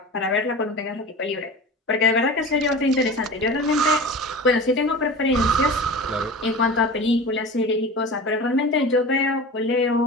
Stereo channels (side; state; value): both; normal; correlation 0.34